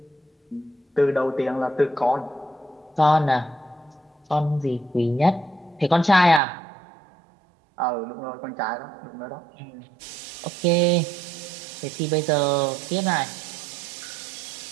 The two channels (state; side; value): drops out; left; at 6.4 s